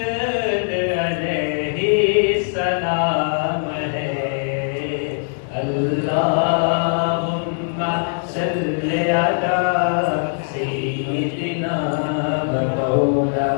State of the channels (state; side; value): silent; right; 65 dB below the other